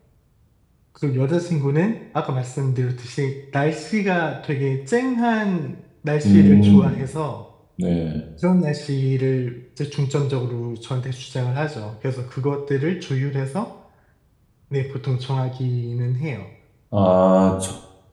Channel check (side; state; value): both; identical; correlation 1.00